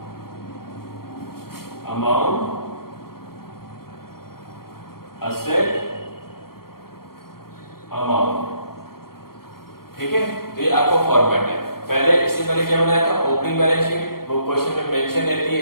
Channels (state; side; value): late; right; 0.94 ms